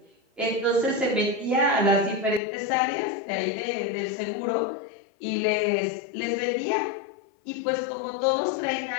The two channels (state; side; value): drops out; right; at 2.4 s